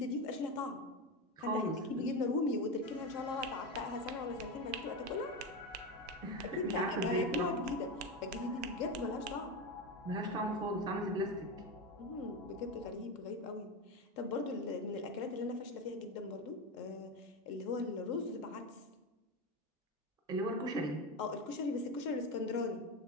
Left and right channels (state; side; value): normal; both; correlation 0.17